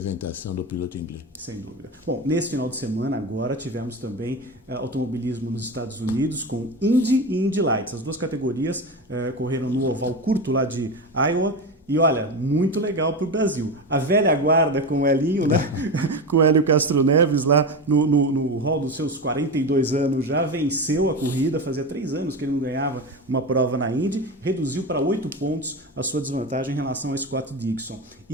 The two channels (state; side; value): normal; both; correlation 0.21